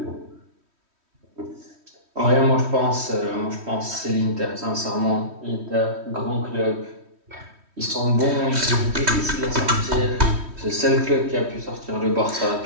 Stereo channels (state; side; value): late; left; 3.1 ms